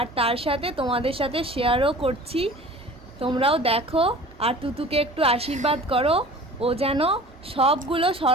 তার সাথে তোমাদের সাথে শেয়ারও করছি। তোমরাও দেখো আর তুতুকে একটু আশীর্বাদ করো, ও যেন সবগুলো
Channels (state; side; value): normal; both; correlation 0.43